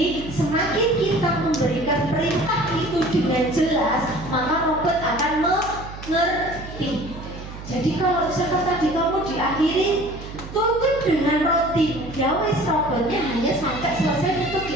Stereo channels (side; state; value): right; noise; hum, 12 dB below the sound